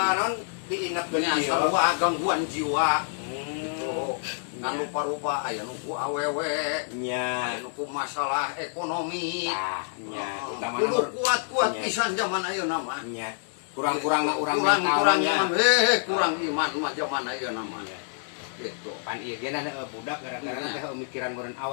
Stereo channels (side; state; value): right; silent; 60 dB below the other